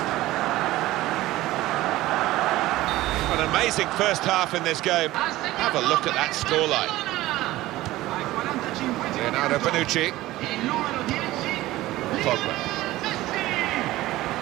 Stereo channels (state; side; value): quieter; left; 16.9 dB